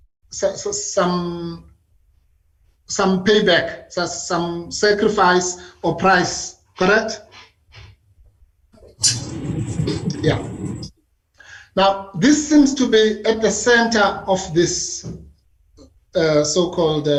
payback, some sacrifice or price, correct? Yeah. Now, this seems to be at the center of this so-called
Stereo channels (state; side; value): identical; both; correlation 1.00